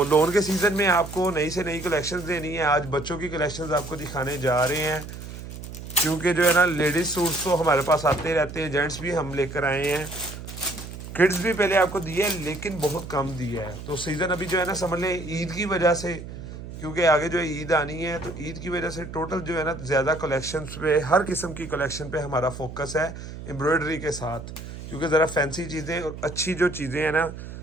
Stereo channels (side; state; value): right; noise; hum, 11 dB below the sound